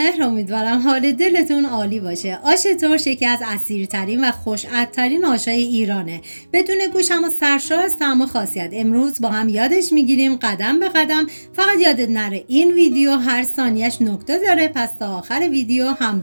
امیدوارم حال دلتون عالی باشه. آش ترش یکی از اصیل‌ترین و خوش‌عطرترین آشای ایرانه. بدون گوش اما سرشار از طعم و خاصیت. امروز با هم یادش میگیریم قدم به قدم. فقط یادت نره این ویدیو هر ثانیه‌اش نکته داره، پس تا آخر ویدیو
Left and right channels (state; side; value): inverted; both; correlation -1.00